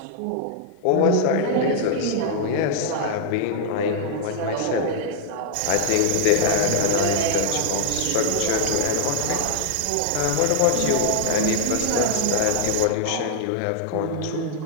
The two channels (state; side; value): different; both; correlation 0.00